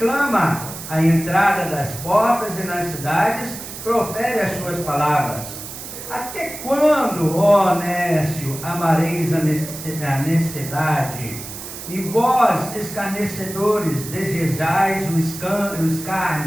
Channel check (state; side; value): noise; right; hiss, 11 dB below the sound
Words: clama, à entrada das portas e nas cidades profere as suas palavras. Até quando, ó nécio, amareis a necessidade? E vós, escarnecedores, desejais o